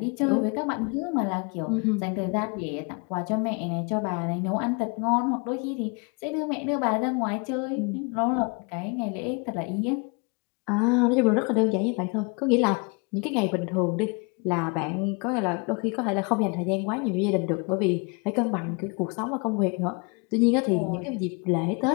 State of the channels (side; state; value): right; quieter; 32.5 dB